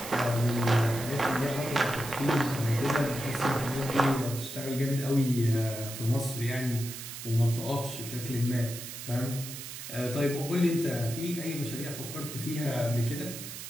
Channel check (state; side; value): noise; right; hiss, 10 dB below the sound